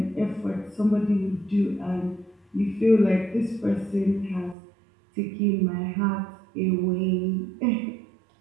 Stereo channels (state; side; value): drops out; left; at 4.5 s